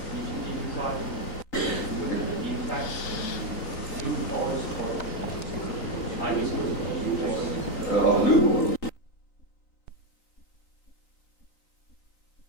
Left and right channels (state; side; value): late; right; 4.0 ms